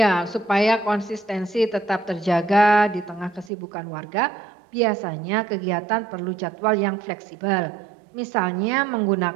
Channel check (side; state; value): left; drops out; at 3.5 s